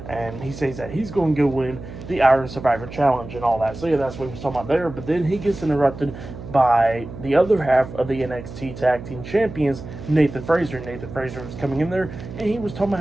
and he says that he's going to go win the Iron Survivor Challenge and all that. So yeah, that's what he was talking about there. But then he gets interrupted by the other half of the NXT Tag Team Champions, Nathan Frazer. Nathan Frazer was coming in there, and he was talking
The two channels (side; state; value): right; noise; hum, 12 dB below the sound